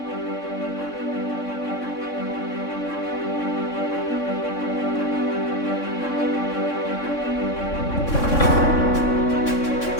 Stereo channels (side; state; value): right; late; 3.6 ms